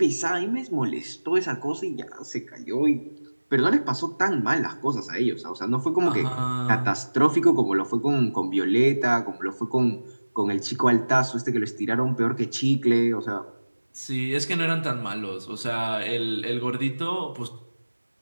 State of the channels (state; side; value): inverted; both; correlation -1.00